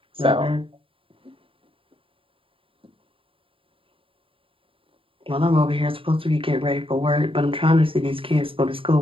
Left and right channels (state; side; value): late; left; 0.26 ms